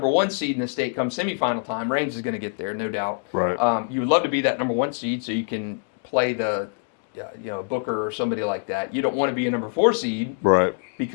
1 seed in the state come semifinal time. Range is going to get there, no doubt. Right. You would love to be that number 1 seed so you can play the Booker or somebody like that. You don't want to be a number 4 seed, right?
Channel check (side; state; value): right; silent; digital silence